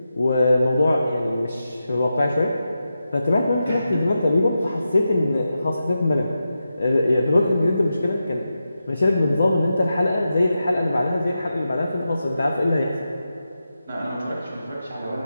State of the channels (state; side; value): inverted; both; correlation -0.90